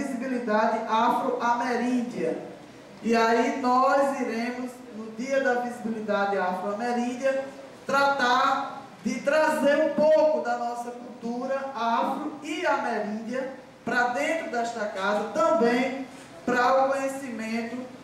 Afro-Ameríndia. E aí nós iremos, no Dia da Visibilidade Afro-Ameríndia, tratar de trazer um pouco da nossa cultura afro e ameríndia para dentro desta casa, também para o conhecimento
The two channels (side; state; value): both; identical; correlation 1.00